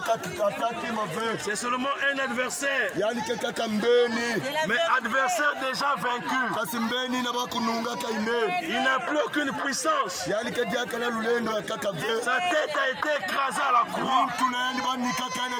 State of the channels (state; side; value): identical; both; correlation 1.00